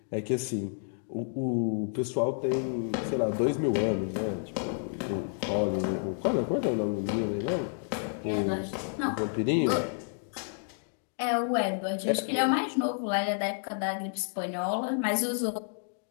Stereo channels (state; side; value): silent; right; digital silence